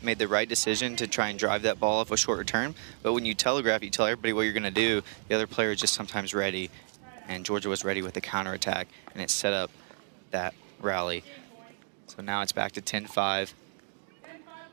made the right decision to try and drive that ball off a short return. But when you telegraph, you tell everybody what you're going to do. The other player is just sometimes ready, and Georgia was ready with the counterattack, and it set up that rally. So now it's back to 10-5.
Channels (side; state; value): left; silent; 57 dB below the other